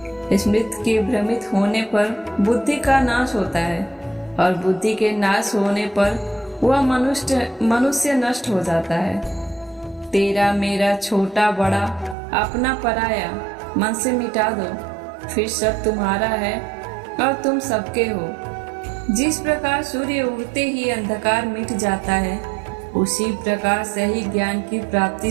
स्मृति के भ्रमित होने पर बुद्धि का नाश होता है, और बुद्धि के नाश होने पर वह मनुष्य नष्ट हो जाता है। तेरा मेरा छोटा बड़ा अपना पराया मन से मिटा दो, फिर सब तुम्हारा है और तुम सबके हो। जिस प्रकार सूर्य उगते ही अंधकार मिट जाता है, उसी प्रकार से ही ज्ञान की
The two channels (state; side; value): drops out; left; at 12.2 s